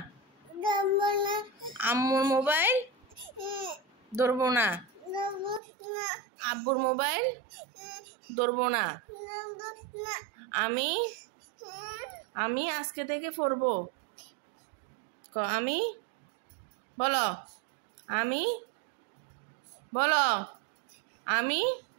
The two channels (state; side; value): drops out; left; at 5.6 s